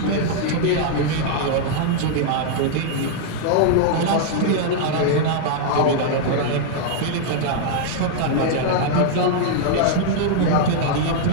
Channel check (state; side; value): different; both; correlation -0.01